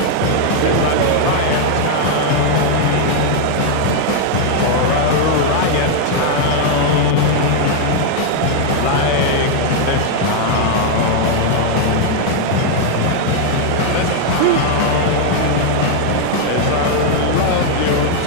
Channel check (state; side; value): different; both; correlation 0.00